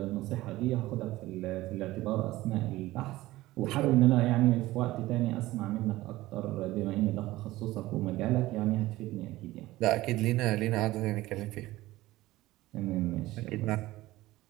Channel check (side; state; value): left; quieter; 17.5 dB